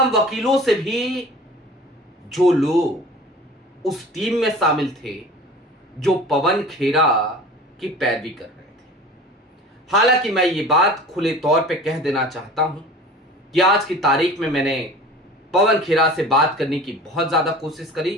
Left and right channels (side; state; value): both; normal; correlation 0.41